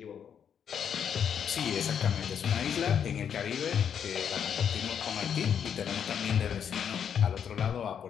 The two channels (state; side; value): quieter; right; 8.1 dB